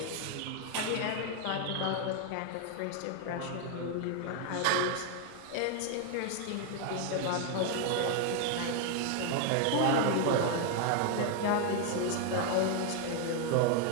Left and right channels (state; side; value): different; both; correlation 0.01